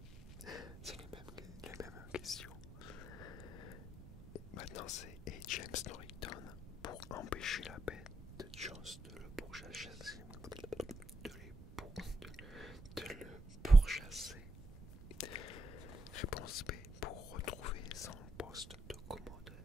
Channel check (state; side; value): noise; right; rumble, 15 dB below the sound